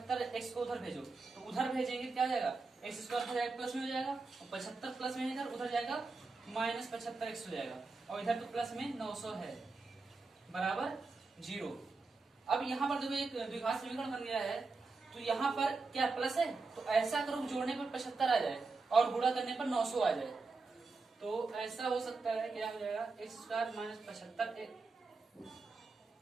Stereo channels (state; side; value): quieter; left; 4.0 dB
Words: को उधर भेजो, तो उधर भेजेंगे क्या हो जाएगा? एक्स स्क्वायर हो जाएगा प्लस में हो जाएगा, और 75 प्लस में इधर उधर जाएगा माइनस 75x हो जाएगा, और इधर तो प्लस में 900 है, बराबर 0। अब यहाँ पर देखो एक द्विघात समीकरण बन गया है, तो यहाँ पर क्या प्लस है, तो ऐसा करो जोड़ने पर 75 आ जाए और गुणा करने पर 900 आ जाए। तो ऐसा हो सकता है, क्या हो जाएगा? एक्स स्क्वायर माइनस 75,